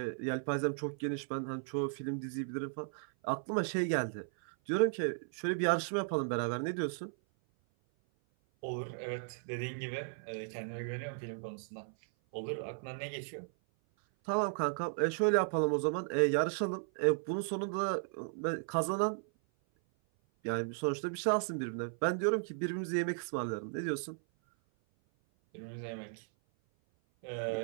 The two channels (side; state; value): left; silent; 54 dB below the other